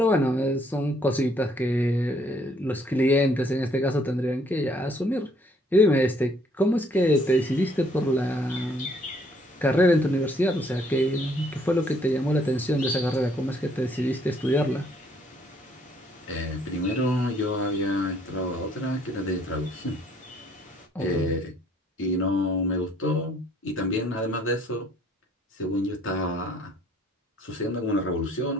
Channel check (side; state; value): both; normal; correlation 0.64